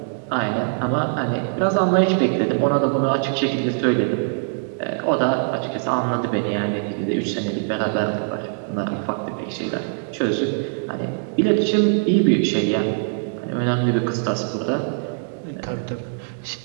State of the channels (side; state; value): left; silent; 64 dB below the other